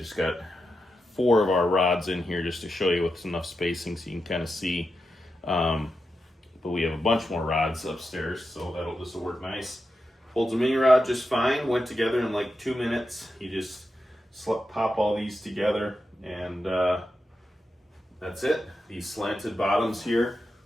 got 4 of our rods in here just to show you with enough spacing so you can kind of see. But we have a bunch more rods upstairs, so this will work nice. Holds a mini rod just fine. Went together in like 2 minutes. You just pop all these together, and that's it. These slanted bottoms here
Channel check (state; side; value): normal; both; correlation 0.88